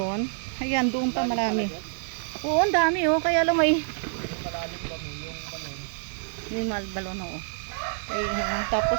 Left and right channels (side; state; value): left; silent; digital silence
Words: Ayan, doon pa marami. Oo, ang dami oh. Kaya lang may Malalim ba mo yung balon? yung balon oh. Ay,